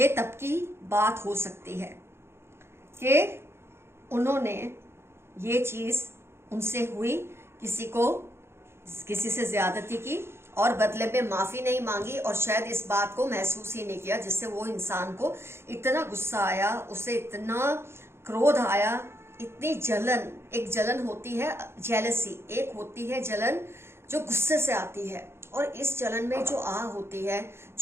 तब की बात हो सकती है कि उन्होंने ये चीज उनसे हुई, किसी से ज्यादती की और बदले में माफी नहीं मांगी, और शायद इस बात को महसूस ही नहीं किया, जिससे वो इंसान को इतना गुस्सा आया, उसे इतना क्रोध आया, इतनी जलन। एक जलन होती है जेलसी, एक होती है जलन जो गुस्से से आती है, और इस जलन में जो आह होती है,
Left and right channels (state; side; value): late; left; 0.12 ms